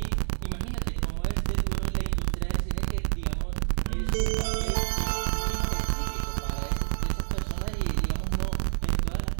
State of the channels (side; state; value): left; silent; digital silence